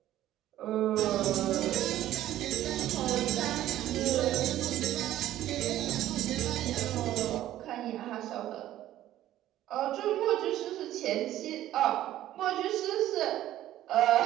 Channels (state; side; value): quieter; left; 13.4 dB